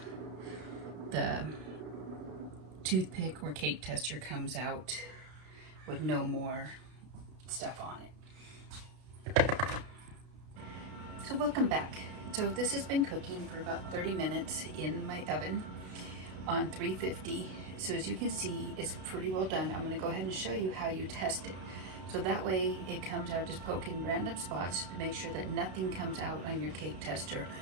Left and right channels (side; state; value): left; late; 32 ms